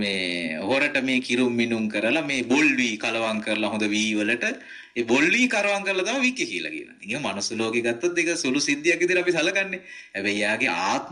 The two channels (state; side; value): identical; both; correlation 1.00